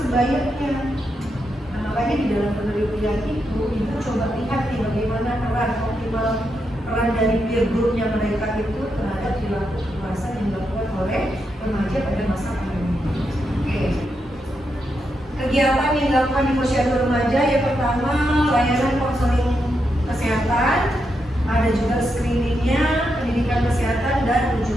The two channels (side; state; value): both; normal; correlation 0.83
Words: Nah, makanya di dalam penelitian itu, ibu coba lihat nih bagaimana peran dari peer groupnya mereka itu terhadap perilaku kekerasan yang dilakukan oleh remaja pada masa pandemi. Oke. Kegiatan yang dilakukan di Posyandu Remaja, yang pertama layanan konseling kesehatan, ada juga screeningnya, pendidikan kesehatan, dan